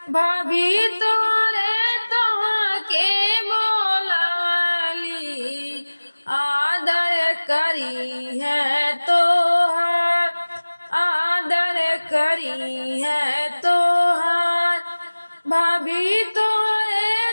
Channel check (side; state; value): both; inverted; correlation -1.00